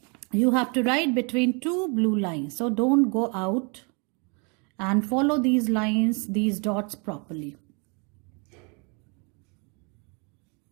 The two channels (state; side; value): quieter; left; 34.3 dB